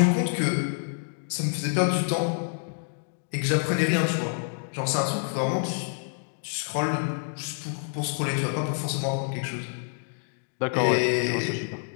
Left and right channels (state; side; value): silent; right; 60 dB below the other